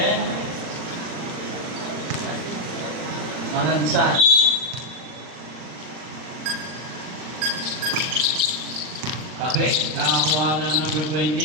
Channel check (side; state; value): left; late; 39 ms